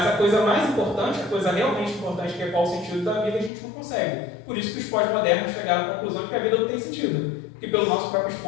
a coisa mais importante, a coisa realmente importante, que é qual o sentido da vida, a gente não consegue. Por isso que os pós-modernos chegaram à conclusão de que a vida não tem sentido, porque pelo nosso próprio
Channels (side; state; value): right; drops out; at 3.5 s